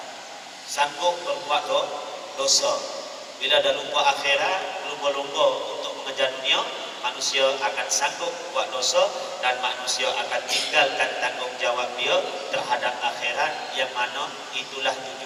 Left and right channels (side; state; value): both; identical; correlation 1.00